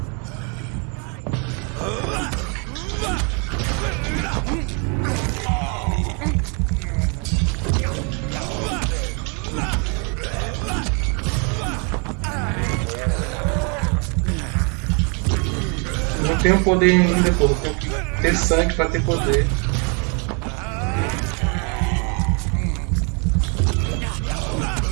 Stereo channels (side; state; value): left; quieter; 35.4 dB